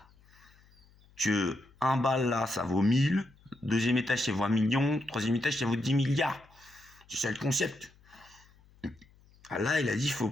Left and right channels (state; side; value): noise; left; hum, 29 dB below the sound